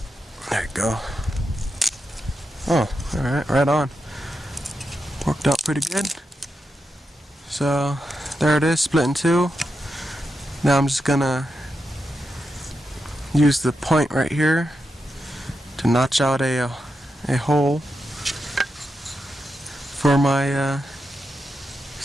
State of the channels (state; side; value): normal; both; correlation 0.87